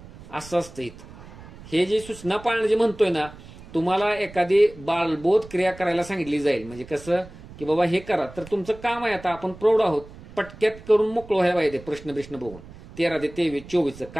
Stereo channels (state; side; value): noise; right; rumble, 18 dB below the sound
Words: असं असतं इथं. हे जे सूचना पाळणं जे म्हणतोय ना, तुम्हाला एखादी बालबोध क्रिया करायला सांगितली जाईल, म्हणजे कसं की बाबा हे करा, तर तुमचं काम आहे, आता आपण प्रौढ आहोत, पटक्यात करून मोकळं व्हायला पाहिजे. प्रश्न बघून 13 ते 23, 24